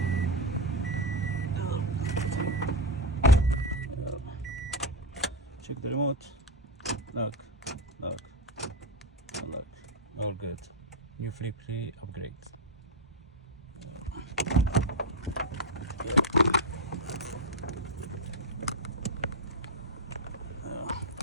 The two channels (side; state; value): both; normal; correlation 0.09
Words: Check the remote. Lock. Lock. Lock. All good. New flip key upgrade.